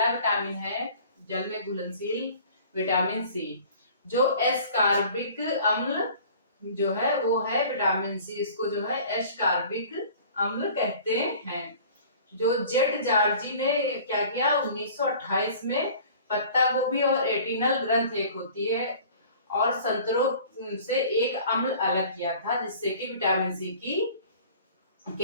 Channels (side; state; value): both; inverted; correlation -0.47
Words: विटामिन है जल में घुलनशील विटामिन सी, जो एस्कॉर्बिक अम्ल जो है वो है विटामिन सी। इसको जो है एस्कॉर्बिक अम्ल कहते हैं। जो जेट जॉर्जी ने क्या किया 1928 में, पत्ता गोभी और एटिनल ग्रंथ एक होती है और संतरों से एक अम्ल अलग किया था, जिससे कि विटामिन सी